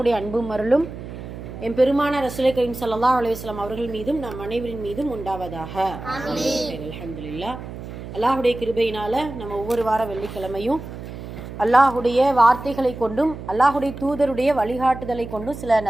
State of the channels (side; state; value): right; noise; hum, 11 dB below the sound